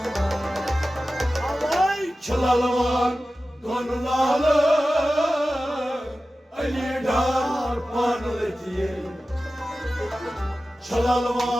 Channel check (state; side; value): normal; both; correlation 0.95